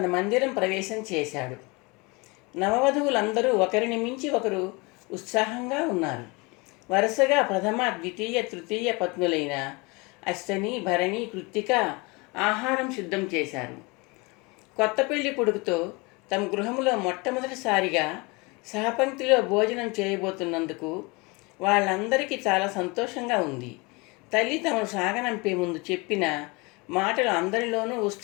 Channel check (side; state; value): right; quieter; 26.9 dB